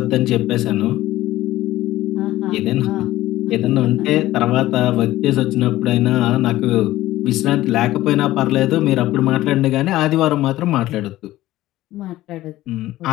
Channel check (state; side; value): quieter; right; 15.8 dB